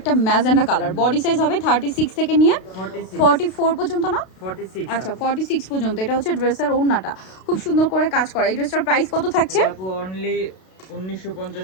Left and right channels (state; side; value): late; right; 32 ms